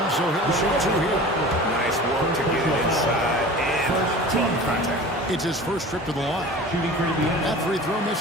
so he'll shoot two here. Nice work to get it inside and draw contact. It's his first trip to the line. That free throw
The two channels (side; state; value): both; normal; correlation 0.38